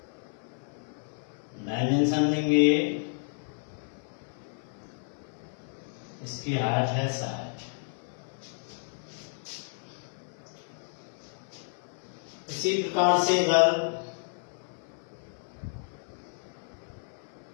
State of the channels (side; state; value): right; silent; 57 dB below the other